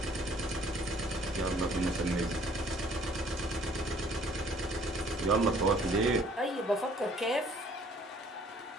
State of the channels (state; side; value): normal; both; correlation 0.59